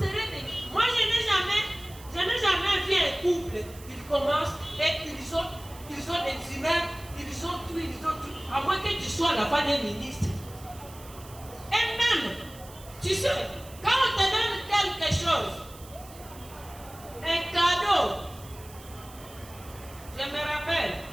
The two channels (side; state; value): right; noise; hiss, 19 dB below the sound